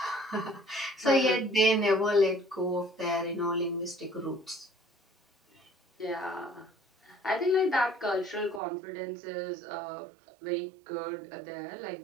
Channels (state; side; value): drops out; left; at 8.6 s